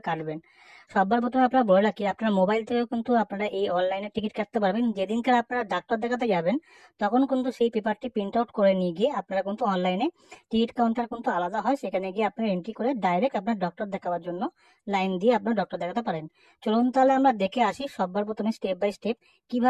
কাটবেন। সবার প্রথমে আপনারা বলে রাখি, আপনার মোবাইল থেকেও কিন্তু আপনারা এই অনলাইনে টিকিট কাটতে পারবেন। যেদিনকার আপনারা ডাক্তার দেখাতে যাবেন তখন কিন্তু সেই পেপারটি প্রিন্ট আউট করে নিয়ে গিয়ে আপনারা কিন্তু অনলাইনে টিকিট কাউন্টার কিন্তু আলাদা হয়, সেখানে গিয়ে আপনারা এন্ট্রি করে ডাইরেক্ট আপনার ডক্টর দেখাবার জন্য লাইন দিয়ে আপনার ডক্টর দেখাতে পারেন। চলুন তাহলে আমরা দেখে আসি সবার প্রথমে স্টেপ বাই স্টেপ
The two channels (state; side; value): identical; both; correlation 1.00